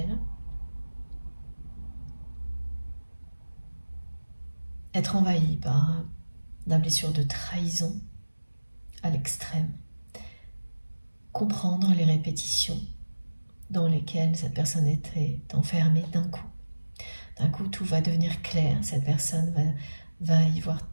Être envahi par la blessure de trahison à l'extrême. Comprendre les répétitions dans lesquelles cette personne était enfermée d'un coup. D'un coup, tout va devenir clair. Cette personne va y voir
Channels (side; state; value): both; inverted; correlation -1.00